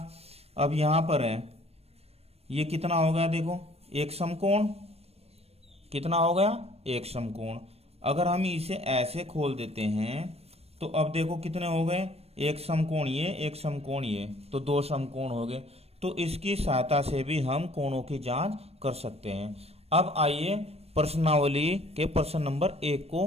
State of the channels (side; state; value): left; late; 0.29 ms